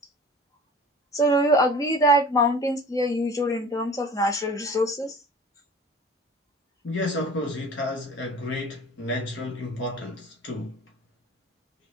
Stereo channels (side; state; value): both; normal; correlation 0.42